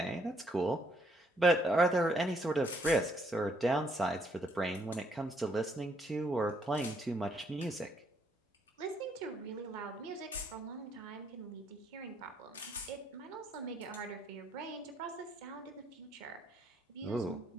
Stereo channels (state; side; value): normal; both; correlation 0.70